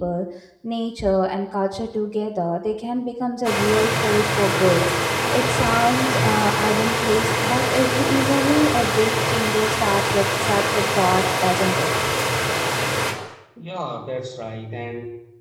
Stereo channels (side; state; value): both; identical; correlation 1.00